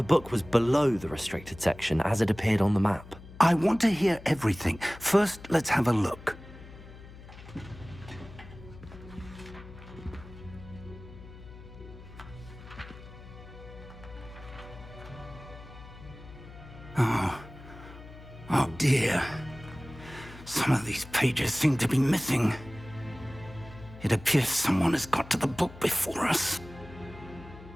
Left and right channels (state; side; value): noise; left; hum, 17 dB below the sound